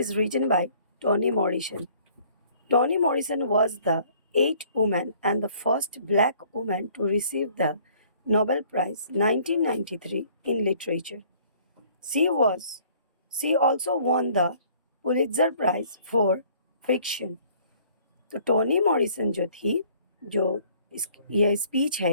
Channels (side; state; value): both; inverted; correlation -0.57